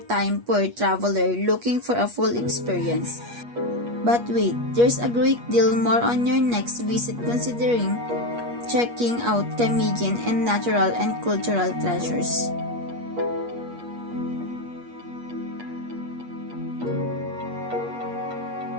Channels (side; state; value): left; late; 8.4 ms